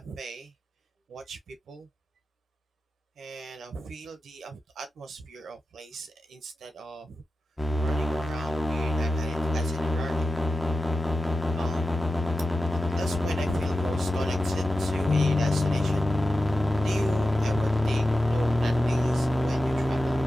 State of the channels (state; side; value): normal; both; correlation 0.92